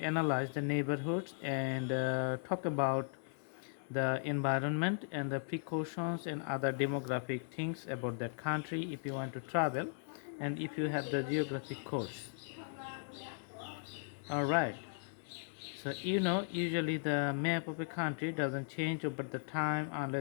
the neighborhoods and talk about the environment and the precautions and other demographic things about that country if you want to travel and if you have the geographic course. All right, so usually the map of a country doesn't change over the time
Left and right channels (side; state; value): right; silent; 53 dB below the other